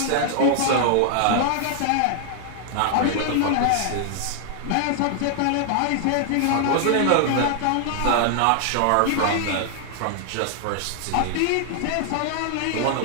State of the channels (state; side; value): different; both; correlation 0.00